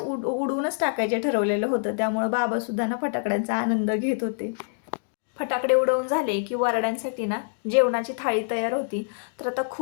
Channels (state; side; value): silent; right; digital silence